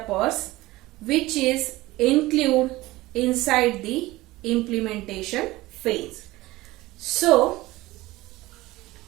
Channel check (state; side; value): quieter; left; 18.7 dB